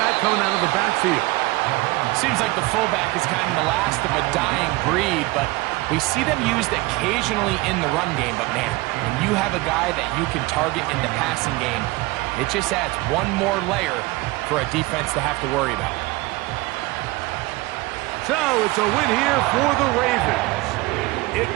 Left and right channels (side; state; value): left; quieter; 21.5 dB